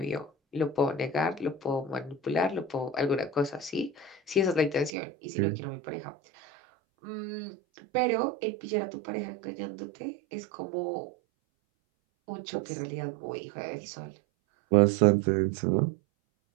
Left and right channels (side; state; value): left; drops out; at 4.9 s